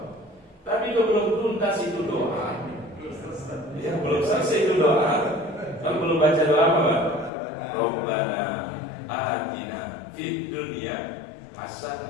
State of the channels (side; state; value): right; drops out; at 7.3 s